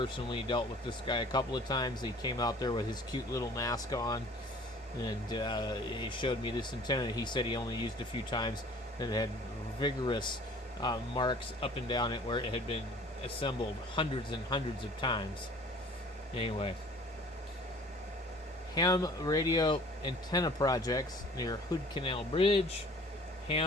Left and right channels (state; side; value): normal; both; correlation 0.50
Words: dealt with this guy a couple of times. He came out there with his cute little mask on, and he showed me this antenna. He said he only used a few times, and it had vigorous marks up and down it where it had been assembled hundreds and hundreds of times. Anyway, ham radio antenna projects near Hood Canal Bridge,